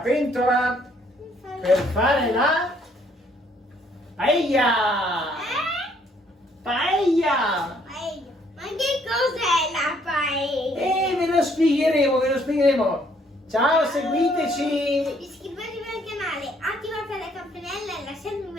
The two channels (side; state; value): both; normal; correlation 0.66